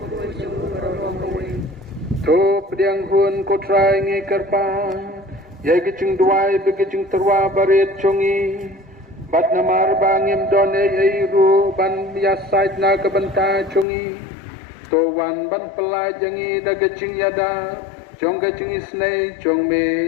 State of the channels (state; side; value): drops out; right; at 13.9 s